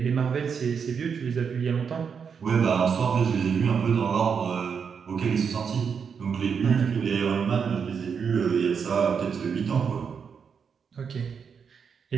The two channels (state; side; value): quieter; left; 6.5 dB